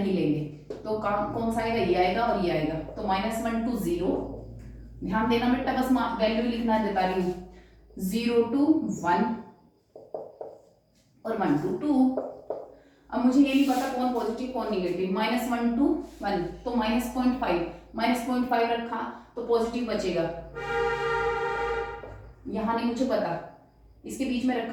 लेंगे। तो कौन सा आएगा, ये आएगा और ये आएगा, तो -1 to 0, ध्यान देना बेटा, बस वैल्यू लिखना बता रही हूँ, 0 to 1 और 1 to 2। अब मुझे ये नहीं पता कौन पॉजिटिव कौन निगेटिव, -1 to 1 तो -0.5 रखा तो पॉजिटिव बचेगा, यहाँ नहीं मुझे पता, इसके बीच में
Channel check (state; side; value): identical; both; correlation 1.00